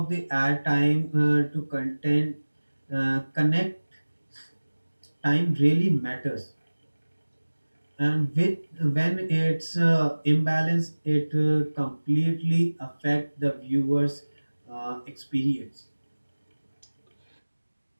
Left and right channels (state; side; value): inverted; both; correlation -1.00